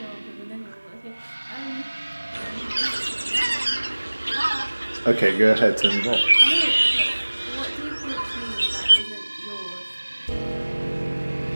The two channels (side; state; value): both; inverted; correlation -1.00